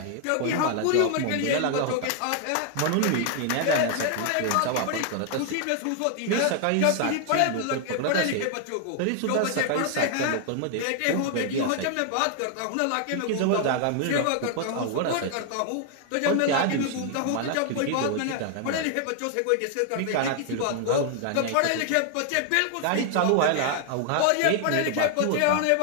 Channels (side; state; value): both; different; correlation 0.00